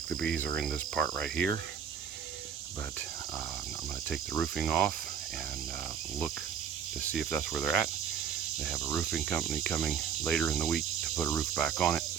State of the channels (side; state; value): left; quieter; 7.8 dB